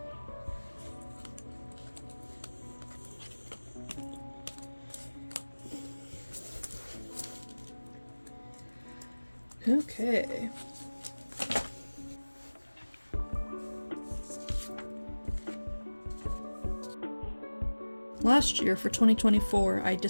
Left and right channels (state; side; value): inverted; both; correlation -1.00